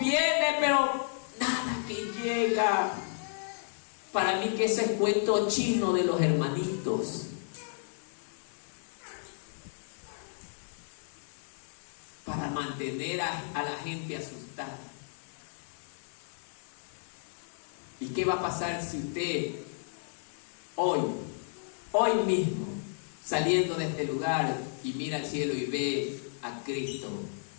pero nada que llega. Para mí que ese es cuento chino de los hermanitos. Para mantener a la gente asustada. ¿Y qué va a pasar si usted hoy mismo, saliendo de este lugar y mira al cielo y ve a Cristo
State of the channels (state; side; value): silent; right; digital silence